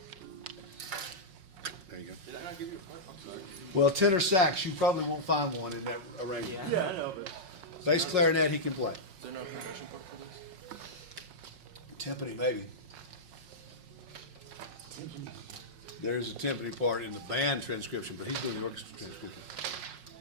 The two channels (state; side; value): late; left; 5.5 ms